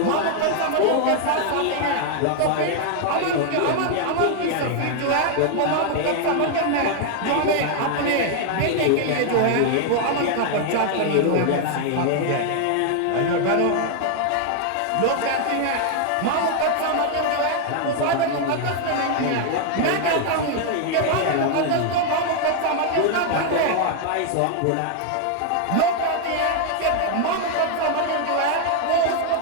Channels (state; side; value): different; both; correlation 0.00